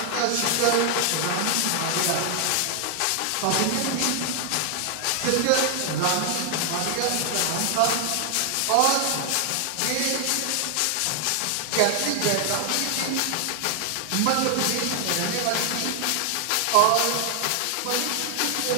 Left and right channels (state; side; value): different; both; correlation 0.00